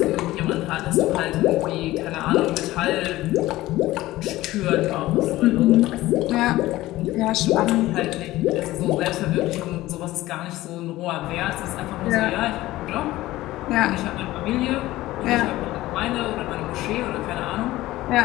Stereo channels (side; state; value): right; quieter; 16.9 dB